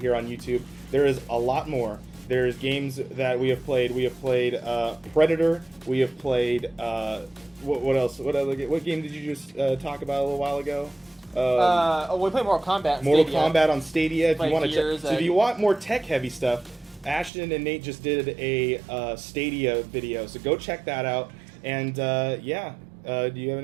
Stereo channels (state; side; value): drops out; left; at 17.3 s